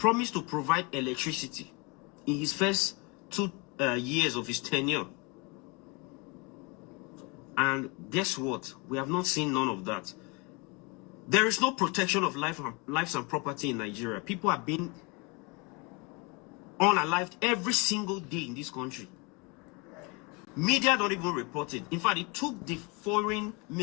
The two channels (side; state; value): right; quieter; 29.2 dB